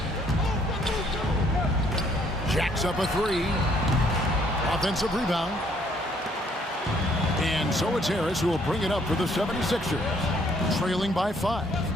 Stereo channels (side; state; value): both; normal; correlation 0.65